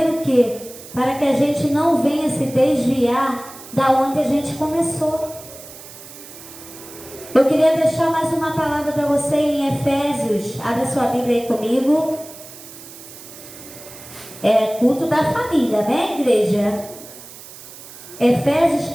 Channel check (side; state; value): right; noise; hiss, 17 dB below the sound